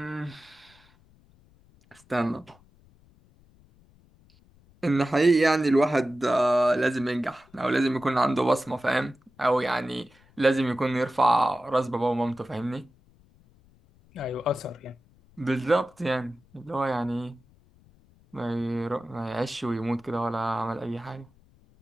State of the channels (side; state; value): left; noise; rumble, 29 dB below the sound